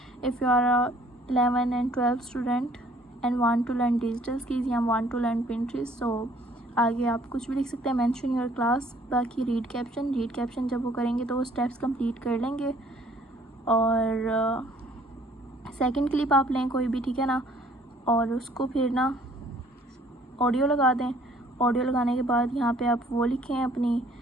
if you are 11 and 12 student and want to learn digital skills या want to learn Pinterest, so आगे आप कुछ भी लिख सकते हैं, मेंशन योर क्लास। बाकी रीड कैप्शन जब वो करेंगे तो वो स्टेप्स कंप्लीट कर लेंगे। और सेकंड क्लिप आप लें कोई भी, ठीक है ना, और उसको फिर ना ऑडियो लगा दें। ऑडियो लगाने के बाद यहाँ पे आप वो लिखें, अपनी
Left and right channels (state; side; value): normal; both; correlation 0.58